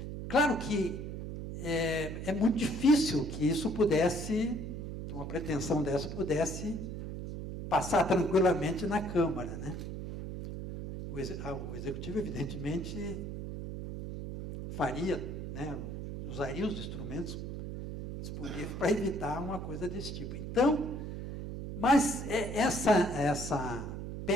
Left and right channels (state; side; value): noise; right; hum, 6 dB below the sound